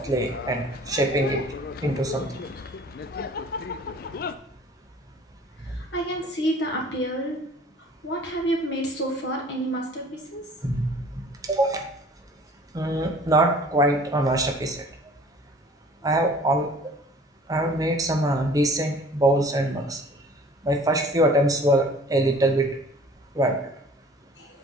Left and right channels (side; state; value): both; normal; correlation 0.49